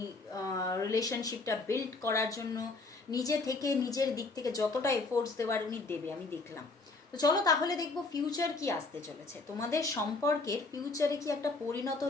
রিলেশনশিপটা বিল্ড করার জন্য নিজে থেকে নিজের দিক থেকে যতটা এফোর্টস দেওয়ার উনি দেবে, আমি দেখলাম। তো চলো তাহলে দেখবো ফিউচার কি আসতে চলেছে, তোমাদের সম্পর্কের ফিউচারে কি একটা পরিণত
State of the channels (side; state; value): right; quieter; 3.6 dB